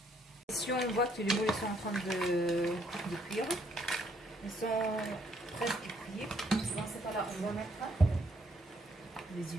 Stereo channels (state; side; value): normal; both; correlation 0.69